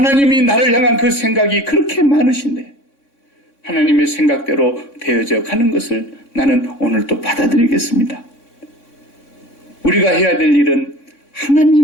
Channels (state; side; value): late; right; 3.6 ms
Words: 나를 향한 그 생각이 그렇게 많으신데 하나님의 생각대로 되어져 가는 것을 나는 오늘 또 받아들이겠습니다. 우리가 해야 될 일은